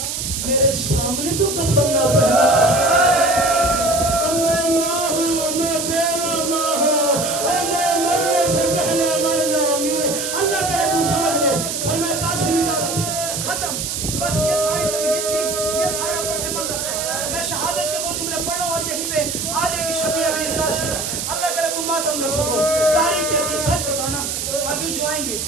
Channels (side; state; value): right; noise; hiss, 3 dB below the sound